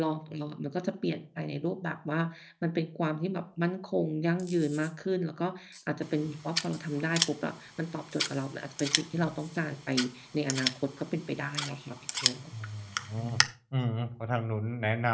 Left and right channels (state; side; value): identical; both; correlation 1.00